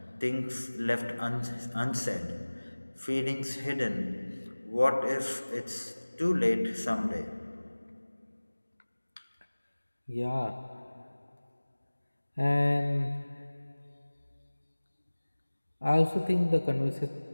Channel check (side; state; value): both; inverted; correlation -1.00